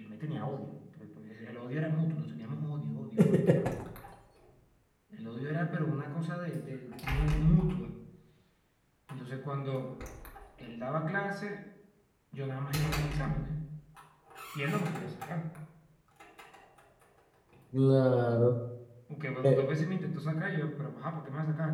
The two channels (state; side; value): identical; both; correlation 1.00